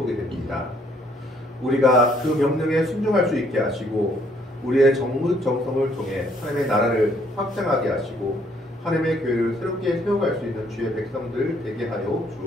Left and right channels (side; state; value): both; normal; correlation 0.66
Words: 됩니다. 우리가 그 명령에 순종할 수 있게 하시고 우리의 정성을 통해 하나님의 나라를 확장하게 하시고 하나님의 교회를 새롭게 세워갈 수 있는 주의 백성들 되게 하여